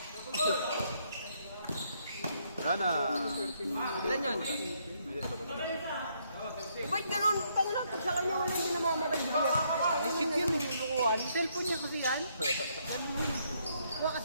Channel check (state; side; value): inverted; both; correlation -0.72